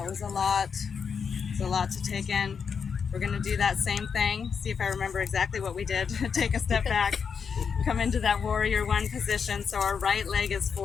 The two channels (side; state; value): right; quieter; 6.3 dB